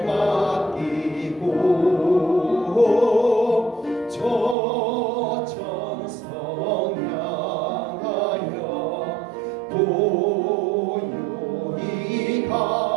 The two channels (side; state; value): left; drops out; at 4.5 s